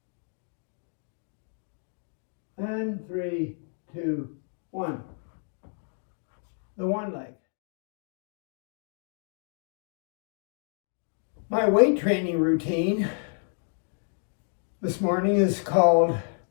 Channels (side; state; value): right; silent; 58 dB below the other